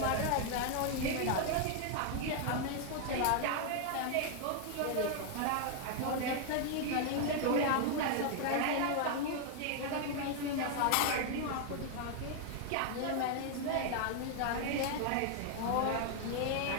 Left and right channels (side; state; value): both; different; correlation 0.00